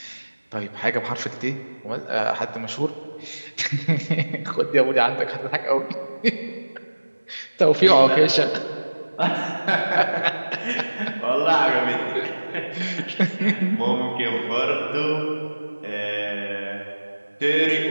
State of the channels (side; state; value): both; inverted; correlation -1.00